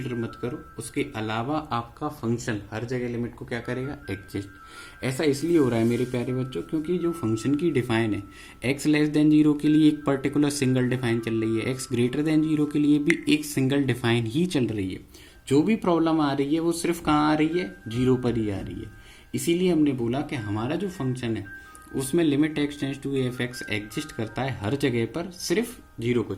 मत करो, उसके अलावा आपका फंक्शन हर जगह लिमिट को क्या करेगा, एग्जिस्ट। ऐसा इसलिए हो रहा है मेरे प्यारे बच्चों क्योंकि जो फंक्शन की डिफाइन है एक्स लेस देन 0 के लिए एक पर्टिकुलर सिंगल डिफाइन चल रही है, एक्स ग्रेटर देन 0 के लिए भी एक सिंगल डिफाइन ही चल रही है। जो भी प्रॉब्लम आ रही है वो सिर्फ कहाँ आ रही है, 0 पर ही आ रही है। इसीलिए हमने बोला कि हमारा जो फंक्शन है उसमें limit X tends to F X exist करता है हर जगह पर, सिर्फ 0 को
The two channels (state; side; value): identical; both; correlation 1.00